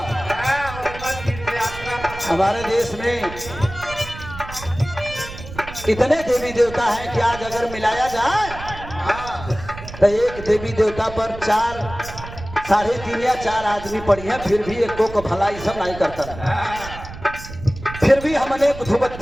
हमारे देश में इतने देवी देवता हैं कि आज अगर मिलाया जाए तो एक देवी देवता पर 4, 3.5 या 4 आदमी पड़ी हैं, फिर भी एक को भलाई सब नहीं करता। फिर भी हमने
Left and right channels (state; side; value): noise; right; rumble, 13 dB below the sound